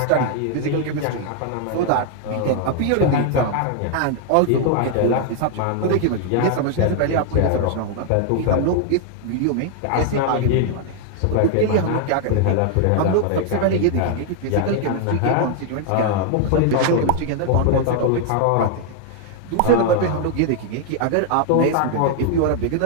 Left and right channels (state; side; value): different; both; correlation 0.00